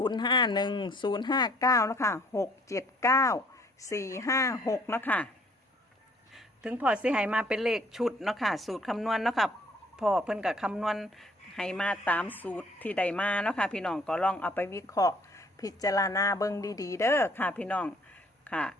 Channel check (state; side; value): normal; both; correlation 0.60